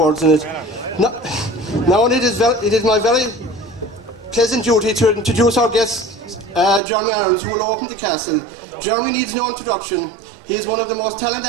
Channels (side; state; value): left; drops out; at 6.8 s